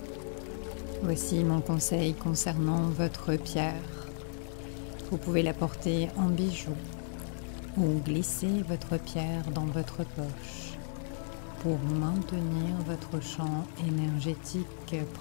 Voici mon conseil concernant votre pierre. Vous pouvez la porter en bijou ou glisser votre pierre dans votre poche pour maintenir votre champ énergétique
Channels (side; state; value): right; silent; digital silence